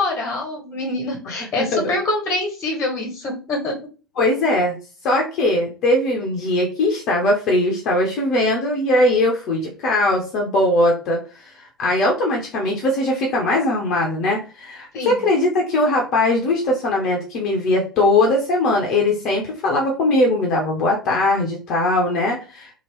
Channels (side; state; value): both; normal; correlation 0.35